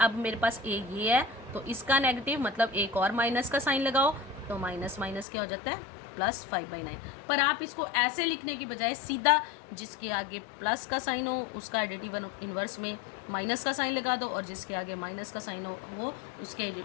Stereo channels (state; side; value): drops out; right; at 5.2 s